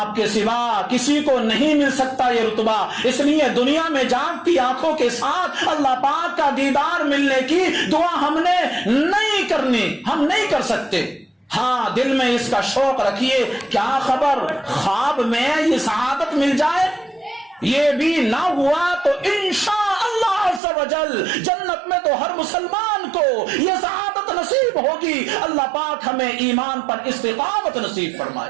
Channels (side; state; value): left; drops out; at 20.6 s